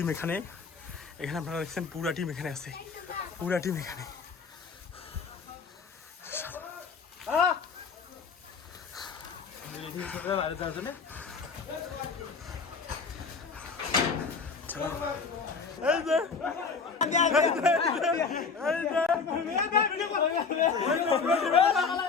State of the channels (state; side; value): quieter; right; 5.2 dB